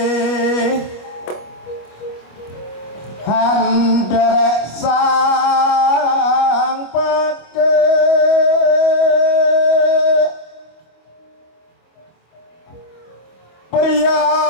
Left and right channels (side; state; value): right; late; 25 ms